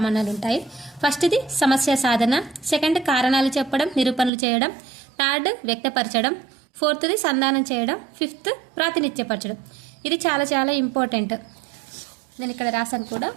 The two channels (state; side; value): drops out; left; at 4.3 s